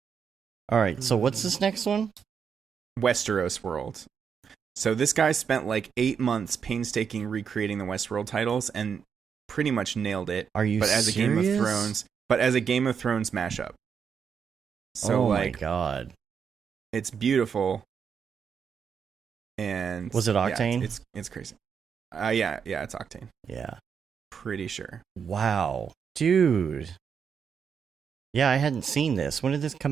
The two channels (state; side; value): quieter; left; 6.9 dB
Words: All right. So what's this next one? Westeros World. So this guy spent like 8 months painstaking recreating the Westworld titles and pretty much nailed it. Are you But as serious? a Game of Thrones mashup. So oh like my god. it's beautiful. And Was it Octane? Yeah, it's crazy. Yeah, it's Octane. Yeah. Pretty sure. Wow. Dude. Yeah, I hadn't seen this. When did this